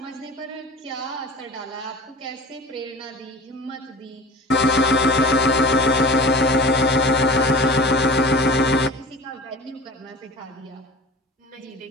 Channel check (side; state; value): both; normal; correlation 0.37